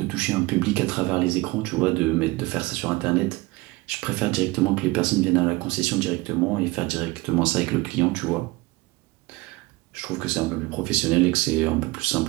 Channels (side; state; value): left; quieter; 21.8 dB